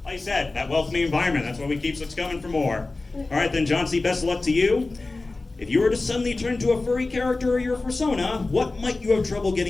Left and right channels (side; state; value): right; quieter; 3.3 dB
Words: like I said, that welcoming environment, that's what we keep us coming for more. All right then, Johnsy, best of luck to you. If you were to suddenly turn to a furry character or your persona, what might you have trouble